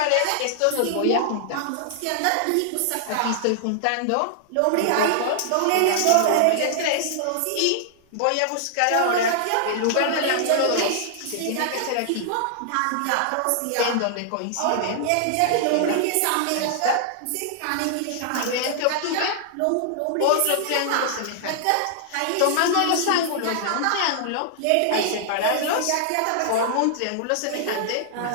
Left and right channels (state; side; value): different; both; correlation -0.01